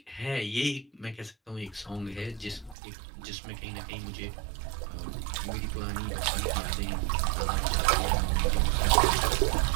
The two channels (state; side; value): drops out; left; at 2.8 s